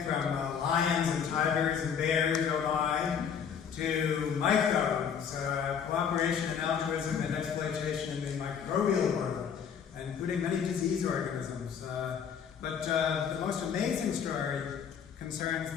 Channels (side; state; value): right; quieter; 7.4 dB